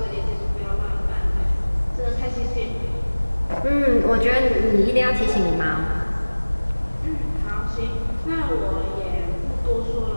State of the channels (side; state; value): both; inverted; correlation -1.00